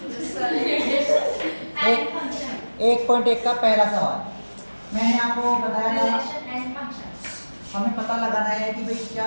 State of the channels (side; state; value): both; inverted; correlation -1.00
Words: एंड फंक्शन 1.1 का पहला सवाल मैंने आपको बताया था, रिलेशन एंड फंक्शन। हमें पता लगाना है कि भाई